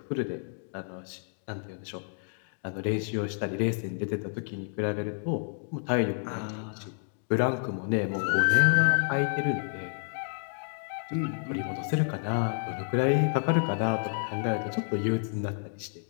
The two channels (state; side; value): silent; right; 58 dB below the other